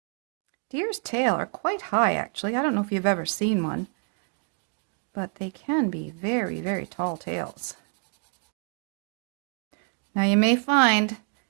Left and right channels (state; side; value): quieter; left; 39.1 dB